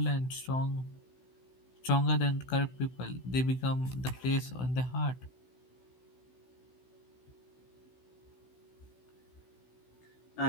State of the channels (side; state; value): right; late; 16 ms